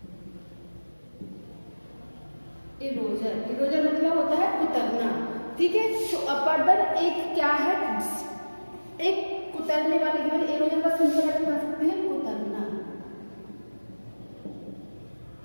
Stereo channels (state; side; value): inverted; both; correlation -1.00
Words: इरोजर, इरोजर मतलब होता है कुतरना। ठीक है, तो अपर्दन एक क्या है? एक कुतरने वाले की वजह इरोजन का सिंपल अर्थ बता सकते हैं कुतरना।